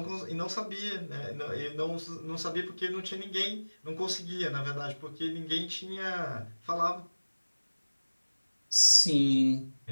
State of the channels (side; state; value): both; inverted; correlation -1.00